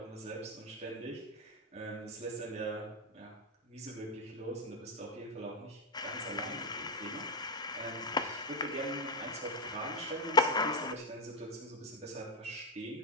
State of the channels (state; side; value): normal; both; correlation 0.05